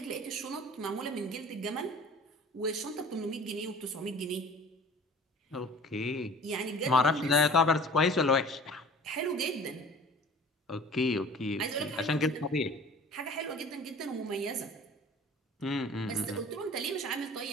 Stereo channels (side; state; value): both; normal; correlation 0.44